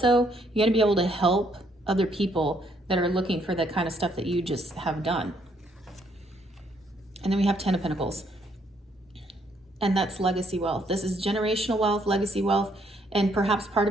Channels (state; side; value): normal; both; correlation 0.70